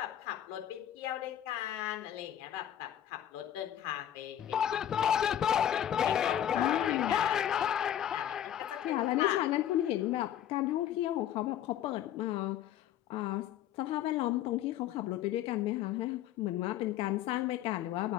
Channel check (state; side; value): quieter; right; 11.0 dB